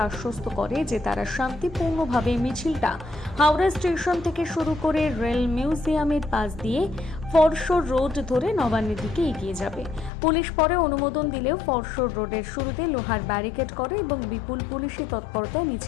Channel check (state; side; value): drops out; right; at 10.1 s